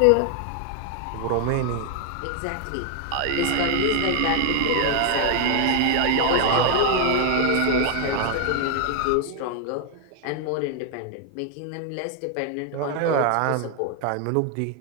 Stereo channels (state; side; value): different; both; correlation 0.01